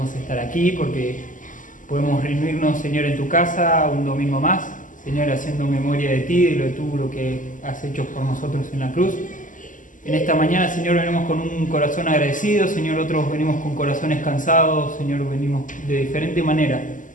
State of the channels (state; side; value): late; right; 0.38 ms